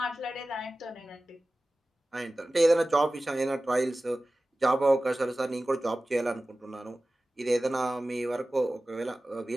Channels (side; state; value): both; normal; correlation 0.96